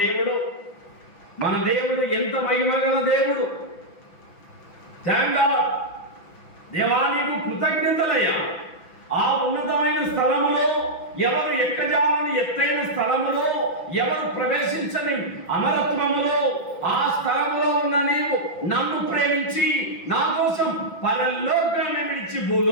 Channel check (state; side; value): late; right; 6.0 ms